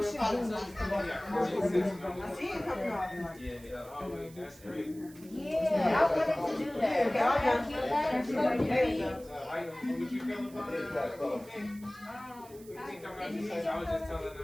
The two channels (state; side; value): noise; right; hiss, 22 dB below the sound